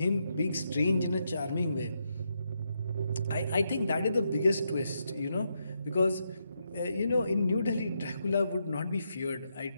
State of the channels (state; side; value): inverted; both; correlation -0.81